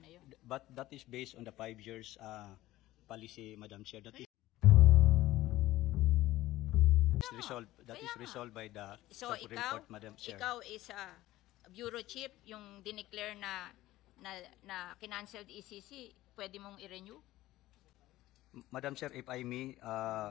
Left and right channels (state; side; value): quieter; right; 16.3 dB